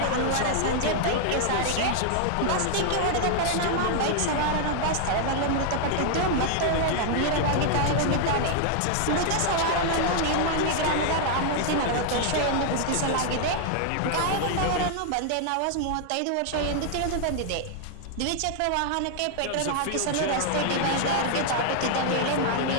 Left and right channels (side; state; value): both; different; correlation 0.00